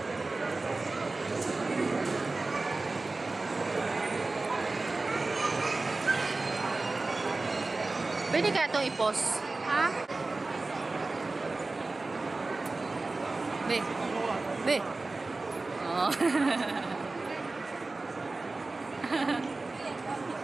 Pwede kaya itong i-pause? Ha? Be. Be. Oh.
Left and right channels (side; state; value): left; quieter; 3.4 dB